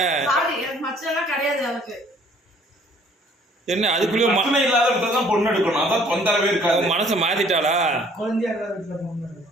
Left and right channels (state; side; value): normal; both; correlation 0.58